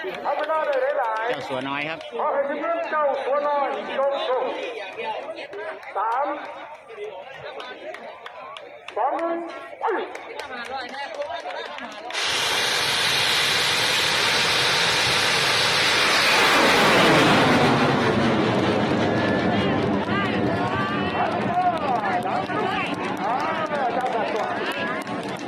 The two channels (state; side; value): identical; both; correlation 1.00